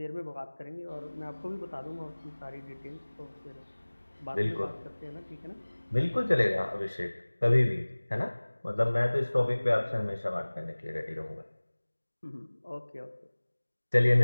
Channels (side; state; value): both; inverted; correlation -1.00